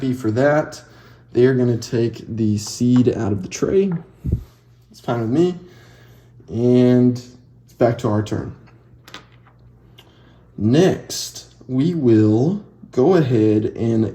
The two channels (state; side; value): identical; both; correlation 1.00